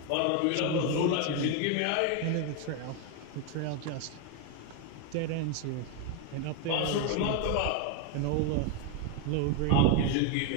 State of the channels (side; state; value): both; different; correlation 0.01